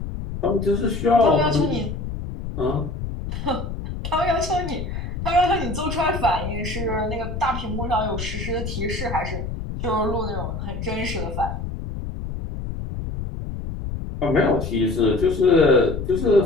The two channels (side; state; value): left; noise; rumble, 6 dB below the sound